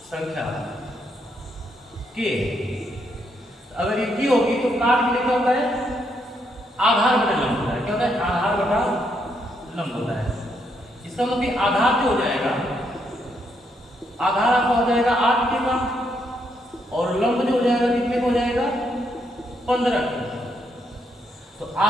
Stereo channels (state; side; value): normal; both; correlation 0.76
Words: के, अगर ये की होगी तो काट के लिए क्या होता है आधार बटा लंब होता है, क्या होता है आधार बटा लंब होता है। इसका मतलब कि आधार जो हो जाएगा, आधार आपका हो जाएगा 8k का और लंब जो हो जाएगा कितने का हो जाएगा 15 का। तो